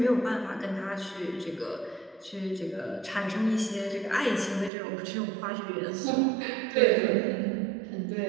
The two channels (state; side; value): drops out; left; at 4.7 s